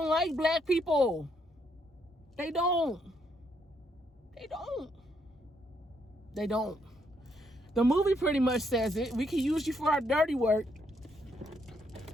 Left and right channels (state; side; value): normal; both; correlation 0.74